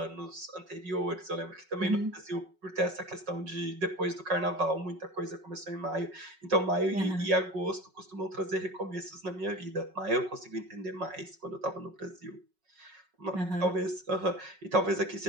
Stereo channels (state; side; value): late; left; 5.4 ms